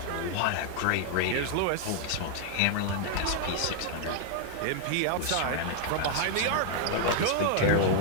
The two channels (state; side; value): different; both; correlation 0.00